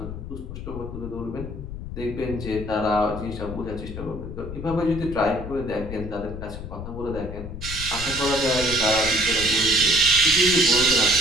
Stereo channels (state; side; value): noise; left; rumble, 9 dB below the sound